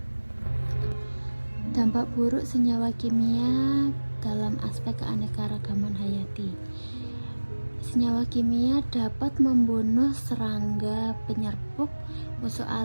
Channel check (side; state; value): both; inverted; correlation -1.00